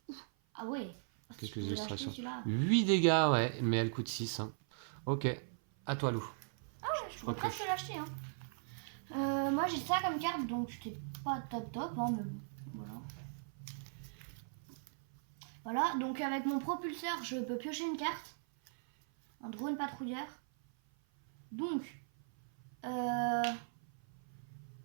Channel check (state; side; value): silent; left; 52 dB below the other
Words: Ah ouais. Ah, Quelques tu peux l'acheter, illustrations. celui-là. 8 dégâts, ouais, mais elle coûte 6, hein. Ok, à toi Lou. Je pourrais presque l'acheter. Hein. Moi j'ai ça comme carte donc c'était pas top hein, mais bon, voilà. Voilà, donc avec mon propulseur je peux piocher une carte. Un drone patrouilleur. Donc